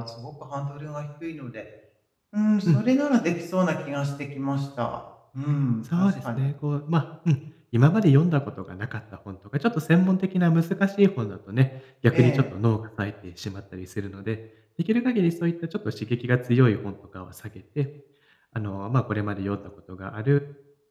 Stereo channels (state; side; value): identical; both; correlation 1.00